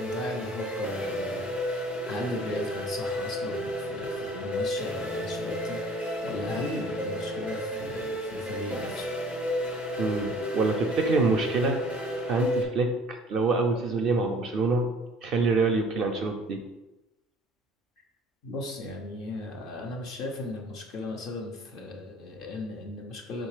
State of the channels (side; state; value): both; normal; correlation 0.52